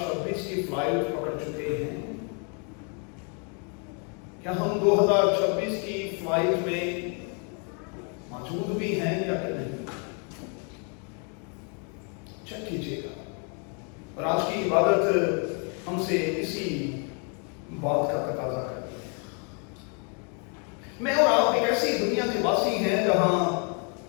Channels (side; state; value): right; quieter; 38.6 dB